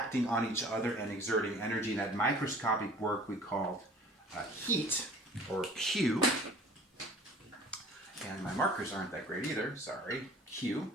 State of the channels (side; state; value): both; normal; correlation 0.47